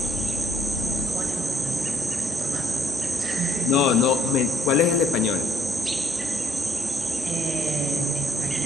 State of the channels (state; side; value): normal; both; correlation 0.66